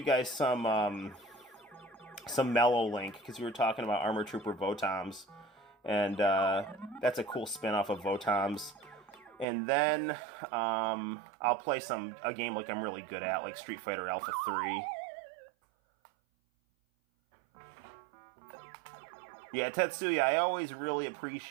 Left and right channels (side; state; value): left; drops out; at 9.5 s